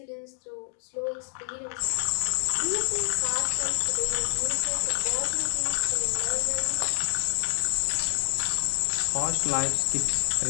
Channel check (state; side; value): silent; right; digital silence